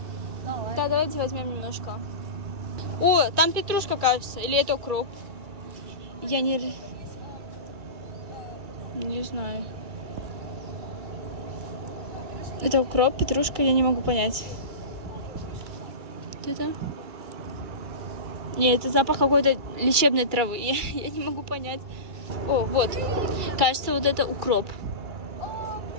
Да, давайте возьмем немножко. О, там петрушка, кажется. Или это укроп? Я не знаю. Это укроп, петрушка, я не могу понять. Вот это? Нет, это запах какой-то лечебной травы. Я не могу понять. О, вот. Кажется, вот это укроп.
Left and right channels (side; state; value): left; late; 2.4 ms